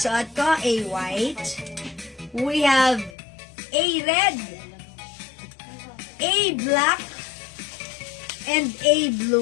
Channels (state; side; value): drops out; right; at 3.2 s